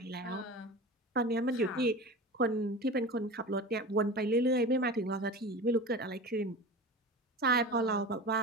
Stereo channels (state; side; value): normal; both; correlation 0.31